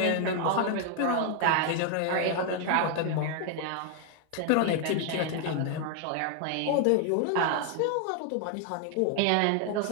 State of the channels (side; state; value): both; different; correlation 0.00